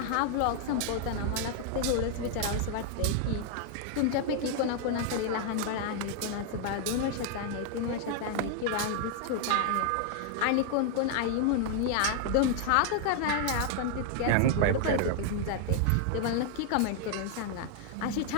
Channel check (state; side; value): different; both; correlation 0.00